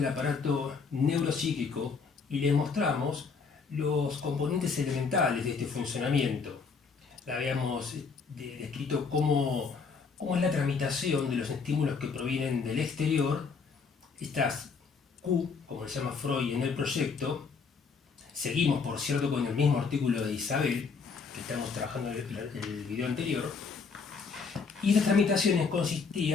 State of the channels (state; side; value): quieter; right; 5.2 dB